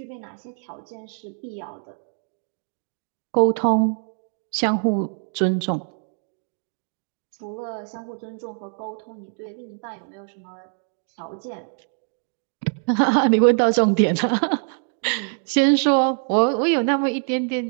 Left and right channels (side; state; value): left; silent; 60 dB below the other